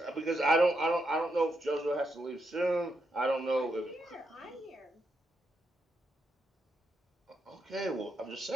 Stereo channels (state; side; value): normal; both; correlation 0.82